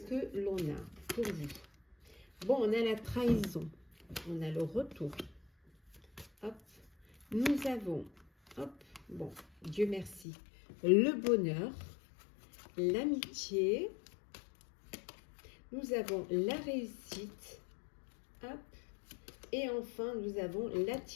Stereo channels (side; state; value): right; drops out; at 10.2 s